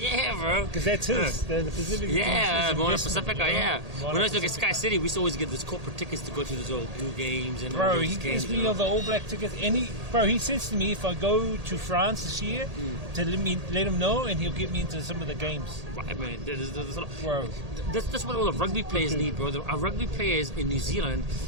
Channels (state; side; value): late; left; 1.8 ms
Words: bro. Because that's his. The Pacifica Yeah, team. Moana Pacifica, yeah. When I used to look at Sky City, we used to always get those corporate tickets to go to those old blue games and all Bro, those he games. gives me all the All Black tickets. Bro, he says to me if I go to France this year, to let him know, and he'll get me into some of the games. Right, man. Bro. That's what all the rugby players need, bro. Our rugby players in New Zealand,